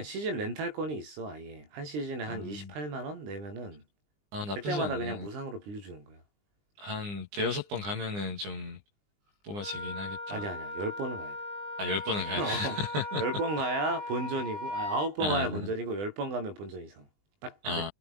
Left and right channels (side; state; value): left; late; 20 ms